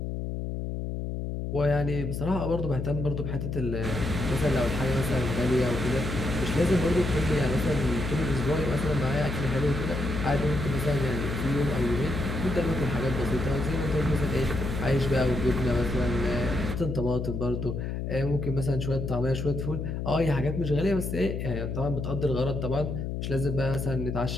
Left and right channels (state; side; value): noise; left; hum, 3 dB below the sound